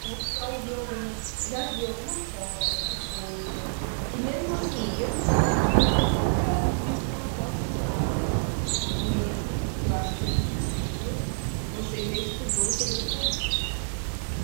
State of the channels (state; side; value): silent; left; digital silence